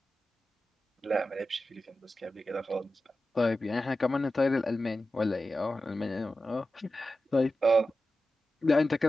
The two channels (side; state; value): both; normal; correlation 0.92